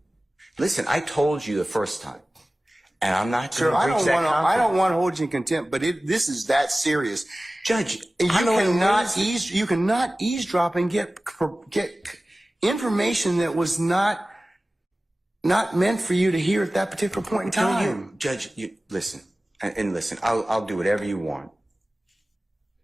listen. I told you the first time, and I'm not Sir, going to breach that I confidence. don't want to hold you in contempt, but this is that serious. Judge, You I don't cannot wanna raise- you cannot eavesdrop and get information that was not meant for you to hear at that particular point in Tell time. you, Judge, listen, and listen. I'll do whatever you want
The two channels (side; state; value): both; normal; correlation 0.97